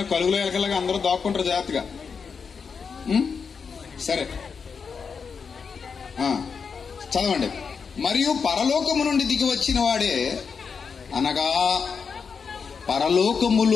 కలుగులో ఎలకలాగా అందరూ దాక్కుంటారు జాగ్రత్తగా. సరే చదవండి. మరియు పరలోకము నుండి దిగి వచ్చిన వాడే, అనగా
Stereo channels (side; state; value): right; quieter; 5.8 dB